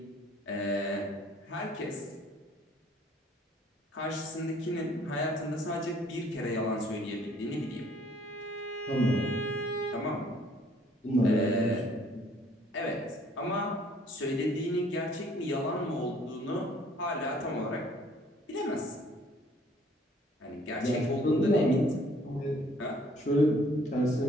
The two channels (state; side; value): normal; both; correlation 0.59